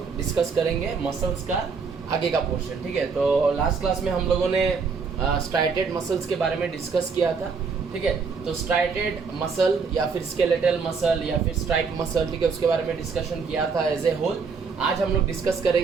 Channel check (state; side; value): quieter; left; 5.2 dB